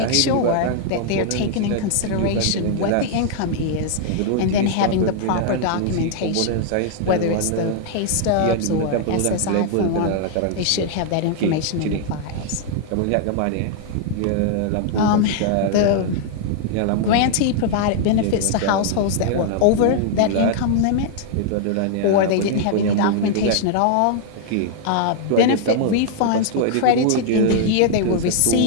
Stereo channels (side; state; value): both; different; correlation -0.01